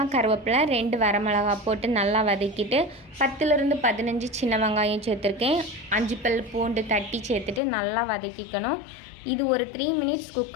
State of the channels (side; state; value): right; drops out; at 7.6 s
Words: கருவேப்பிலை, 2 வரமிளகா போட்டு நல்லா வதக்கிட்டு 10லேருந்து 15 சின்ன வெங்காயம் சேர்த்துருக்கேன். 5 பல் பூண்டு தட்டி சேர்த்துட்டு நல்லா வதக்கிக்கணும். இது ஒரு 3 மினிட்ஸ்